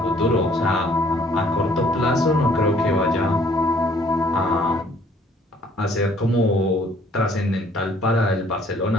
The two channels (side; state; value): both; normal; correlation 0.60